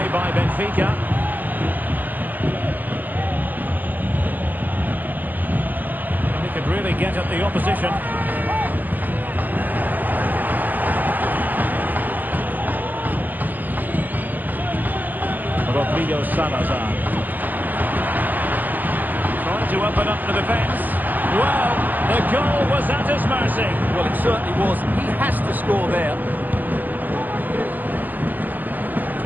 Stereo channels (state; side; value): late; left; 0.085 ms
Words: by Benfica. And he could really get at the opposition. Rodrigo Salazar. To open up the defence. Well, the goal was at his mercy. Well, it certainly was. He has to score there.